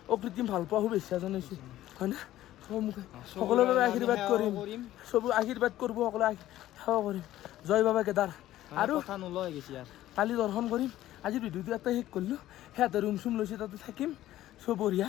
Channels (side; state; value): right; quieter; 14.1 dB